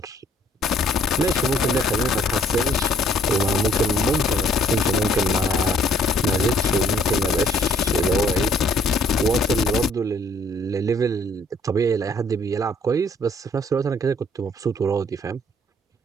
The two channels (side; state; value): both; normal; correlation 0.62